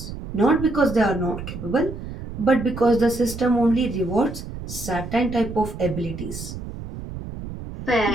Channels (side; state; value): right; noise; rumble, 10 dB below the sound